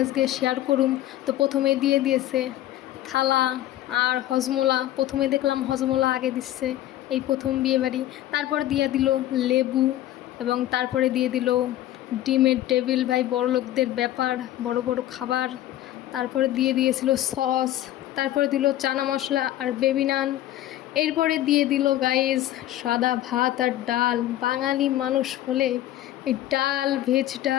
আজকে শেয়ার করুম। তো প্রথমে দিয়ে দিয়েছে থালা আর হজমোলা। প্রথমে দেখলাম হজমোলা আগে দিচ্ছে, এই প্রথম বিয়ে বাড়ি। তারপর দিয়ে দিল লেবু, এবং তারপরে দিয়ে দিল ডিমের টেবিল। ভাই বড় লোকদের ব্যাপার, বড় বড় খাবার। তারপরে দিয়ে দিয়েছিল সস, তারপরে দিল চানা মশলা আর বেবি নান। এরপরে দিয়ে দিল গাইস সাদা ভাত আর ডাল। বাঙালি মানুষ হলে এই ডাল, ভেজ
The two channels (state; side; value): quieter; right; 13.7 dB